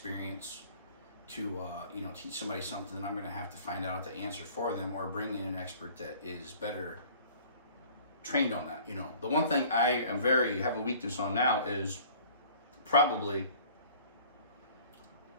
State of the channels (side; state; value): both; inverted; correlation -0.50